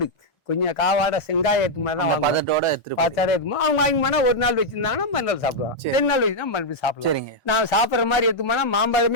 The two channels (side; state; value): both; normal; correlation -0.04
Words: கொஞ்சம் காவாட செங்காயத்து மாதிரி தான் பதத்தோட அவங்க வாங்கினா 1 நாள் வச்சிருந்தாங்கன்னா மறுநாள் சாப்பிடுவாங்க. 2 நாள் வச்சுன்னா மறுபடியும் சாப்பிடுவாங்க. நான் சாப்பிடுற மாதிரி எடுத்துமானா